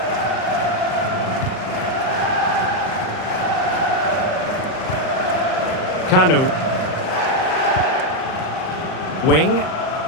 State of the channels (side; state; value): right; late; 38 ms